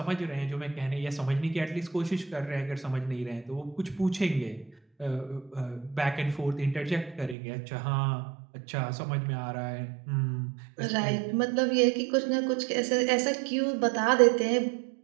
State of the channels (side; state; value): left; drops out; at 7.4 s